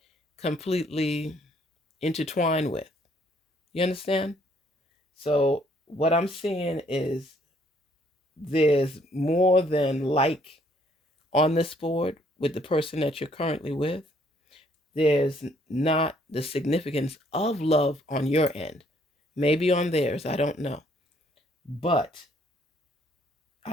completely intertwined with. You understand? So what I'm seeing is there's more than like on this board with the person that you're currently with. There's not the significance of love on your end. Maybe on theirs, I don't know. But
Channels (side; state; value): both; normal; correlation 0.65